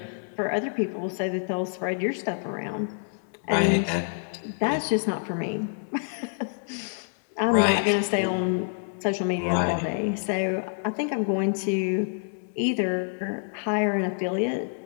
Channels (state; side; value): silent; right; digital silence